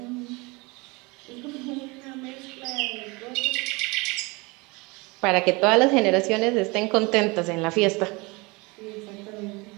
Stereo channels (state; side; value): quieter; left; 26.1 dB